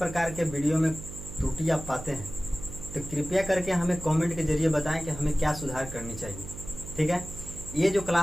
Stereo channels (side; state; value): right; noise; hum, 12 dB below the sound